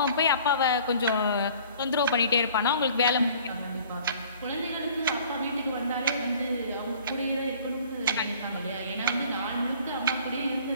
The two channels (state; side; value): inverted; both; correlation -0.51